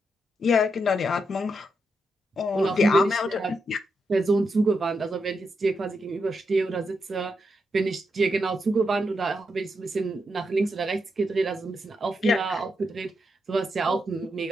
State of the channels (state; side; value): normal; both; correlation 0.83